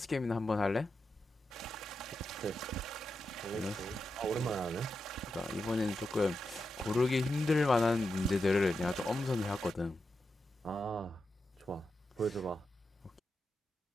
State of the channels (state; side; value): normal; both; correlation 0.88